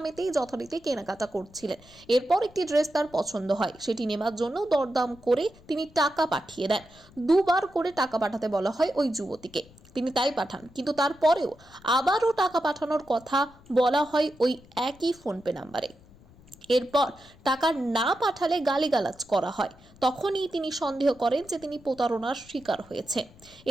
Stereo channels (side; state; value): left; noise; rumble, 25 dB below the sound